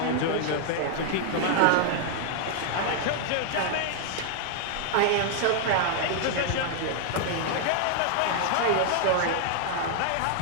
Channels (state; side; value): different; both; correlation 0.00